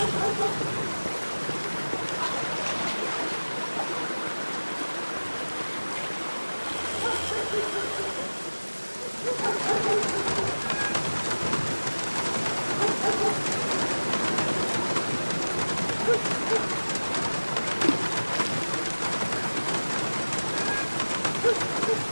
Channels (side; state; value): both; inverted; correlation -1.00